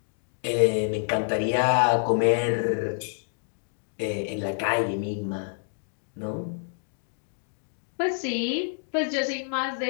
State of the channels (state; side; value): silent; right; digital silence